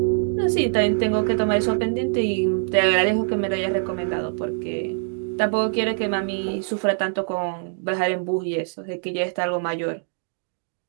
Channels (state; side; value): silent; left; digital silence